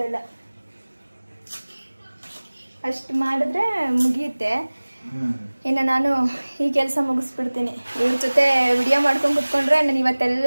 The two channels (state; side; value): inverted; both; correlation -1.00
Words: ಇಲ್ಲ. ಅಷ್ಟು ಮಾಡಿದ್ರೆ ಮುಗಿಯುತ್ತೆ. ಇನ್ನು ನಾನು ಈ ಕೆಲಸ ಮುಗಿಸ್ಬಿಡ್ತೀನಿ. ಇವ್ರ ಜೊತೆ ವಿಡಿಯೋ ಮಾಡ್ಕೊಂಡು ಕುತ್ಕೊಂಡ್ರೆ ನಾನು